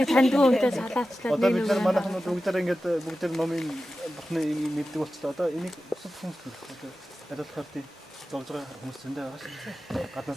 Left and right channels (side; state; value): both; normal; correlation 0.94